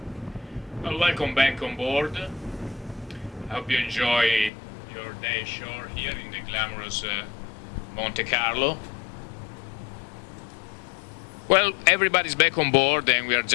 Well, welcome back on board. I hope you enjoy your day ashore here in the glamorous Monte Carlo. Well, everybody's back on board, and we are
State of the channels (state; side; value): drops out; right; at 4.5 s